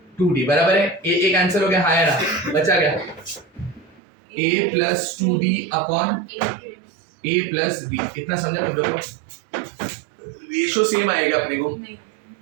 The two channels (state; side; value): drops out; left; at 4.0 s